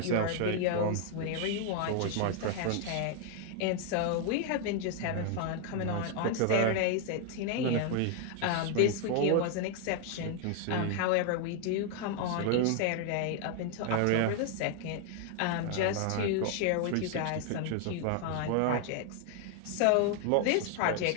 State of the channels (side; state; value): both; different; correlation 0.00